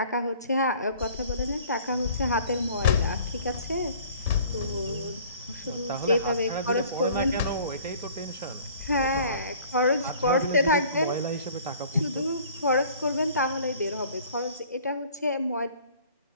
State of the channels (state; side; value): inverted; both; correlation -0.51